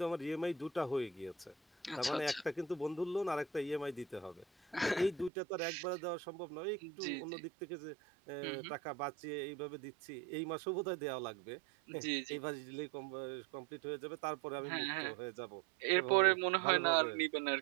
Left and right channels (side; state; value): left; drops out; at 5.3 s